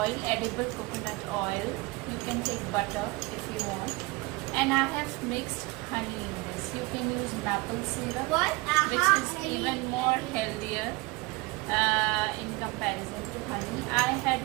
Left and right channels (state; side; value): quieter; left; 24.0 dB